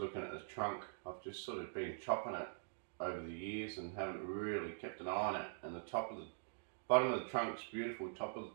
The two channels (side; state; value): left; silent; digital silence